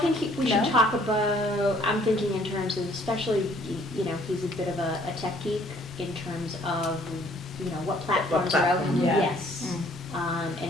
we should No? talk about, I'm thinking in terms of, especially, you know, he's a bit of a tech geek in terms of, you know, what platforms are out. platform. Yeah. Yes,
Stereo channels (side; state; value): both; normal; correlation 0.60